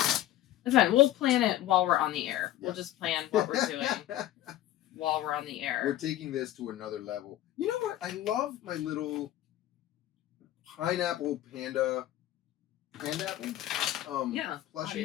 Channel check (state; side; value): quieter; right; 13.7 dB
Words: That's fine. We'll plan it while we're on the air. Yeah. We'll just plan what we're doing while we're on the air. We're taking this to another level. You know what? I love my little pineapple panda Yeah, plushie,